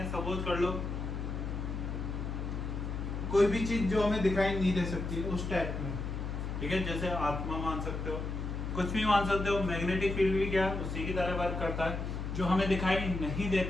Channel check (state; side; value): noise; left; hum, 4 dB below the sound